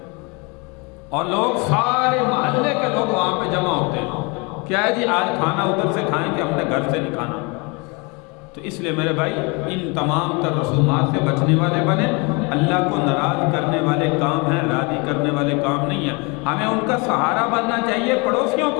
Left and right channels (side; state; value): right; quieter; 29.5 dB